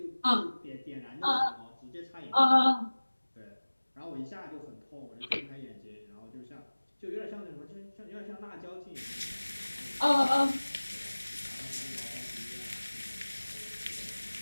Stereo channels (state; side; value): inverted; both; correlation -1.00